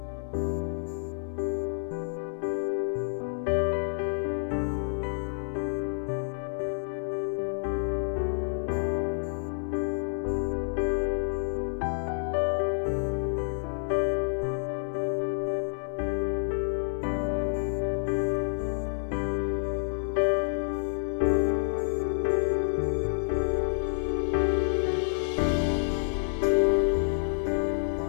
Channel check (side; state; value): right; silent; 59 dB below the other